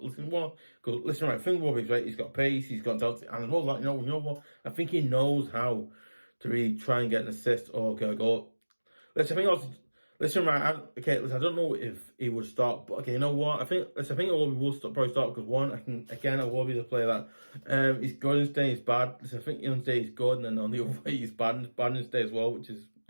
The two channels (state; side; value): inverted; both; correlation -1.00